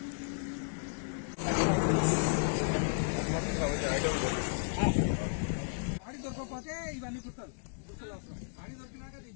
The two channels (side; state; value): right; silent; digital silence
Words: ఆడి దొరకకపోతే ఇవన్నీ గుర్తాలు ఆడి దొరికినాక